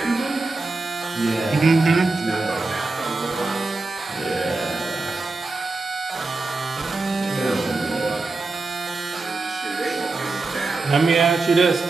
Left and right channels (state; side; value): quieter; left; 3.5 dB